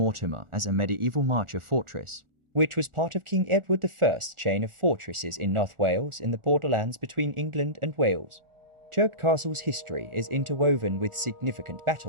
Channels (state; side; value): late; left; 1.4 ms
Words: as a medieval marcher fortress, which was part of King Edward I's chain of fortresses in North Wales in the borderlands between England and Wales. Chirk Castle's history is interwoven with significant